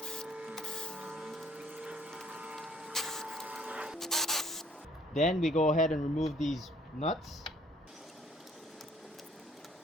Then we go ahead and remove these nuts.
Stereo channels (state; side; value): normal; both; correlation 0.59